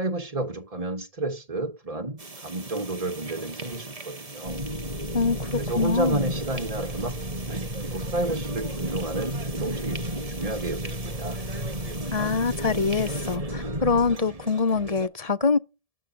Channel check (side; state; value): left; late; 1.7 ms